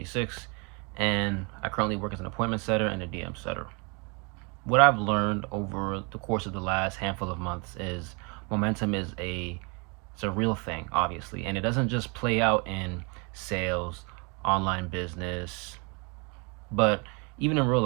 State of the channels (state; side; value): quieter; left; 32.2 dB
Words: and I currently work as an appointment setter and a DM setter. What I've learned over the course of the last handful of months is momentum is a real thing, obviously, and it doesn't just play out in sales, online business, but even in real